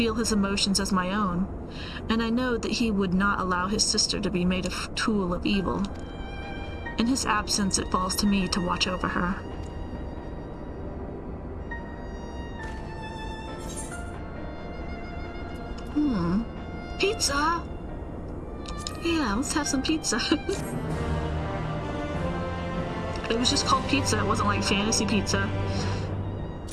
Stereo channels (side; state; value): both; identical; correlation 1.00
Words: his emotions as my own, and I know that he would not allow his sister to be made a tool of evil. In his absence, it falls to me to watch over her. Pizza! Yeah, let's have some pizza. It was just called pizza, it wasn't like fantasy pizza.